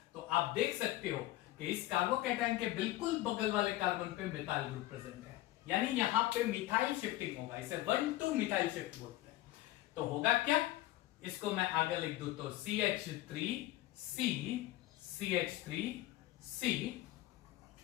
तो आप देख सकते हो कि इस कार्बोकैटायन के बिल्कुल बगल वाले कार्बन पे मिथाइल ग्रुप प्रेजेंट है, यानी यहां पे मिथाइल शिफ्टिंग होगा, इसे 1-2 मिथाइल शिफ्ट बोलते हैं। तो होगा क्या, इसको मैं आगे लिख दूं तो CH3C CH3C,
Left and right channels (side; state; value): right; quieter; 16.6 dB